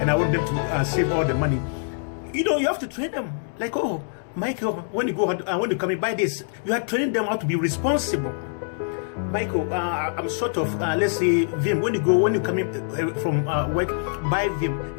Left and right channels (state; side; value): silent; right; digital silence